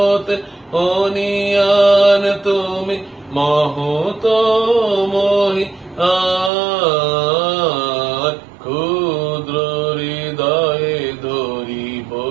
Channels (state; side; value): drops out; left; at 6.5 s